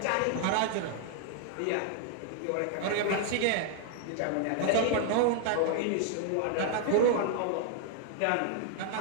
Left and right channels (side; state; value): both; different; correlation 0.00